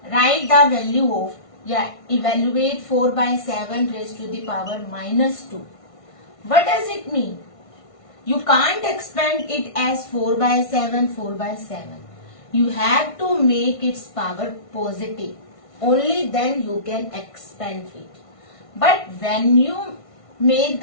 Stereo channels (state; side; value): late; right; 1.5 ms